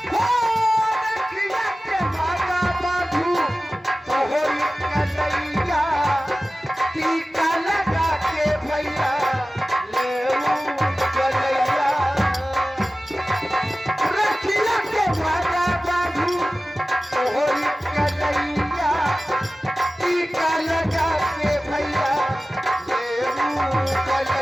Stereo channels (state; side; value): normal; both; correlation 0.96